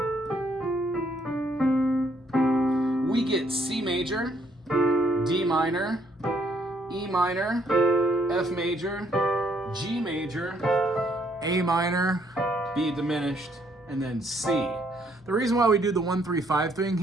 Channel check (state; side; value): normal; both; correlation 0.69